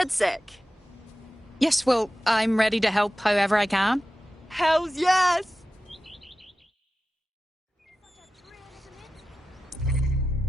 Yes, well, I'm ready to help however I can. Hells yes!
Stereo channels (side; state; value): both; normal; correlation 0.94